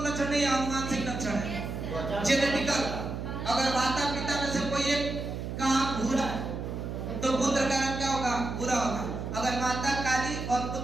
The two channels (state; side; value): noise; right; hum, 5 dB below the sound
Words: लक्षण नहीं है, अनुवांशिक लक्षण है, जेनेटिकल। अगर माता पिता में से कोई एक का आंख भूरा तो पुत्र का रंग क्या होगा? भूरा होगा। अगर माता काली और